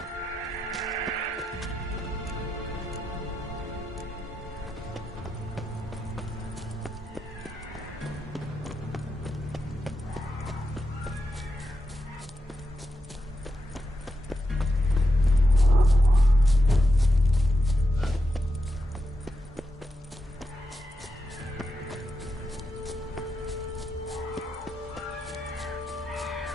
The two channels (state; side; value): normal; both; correlation 0.86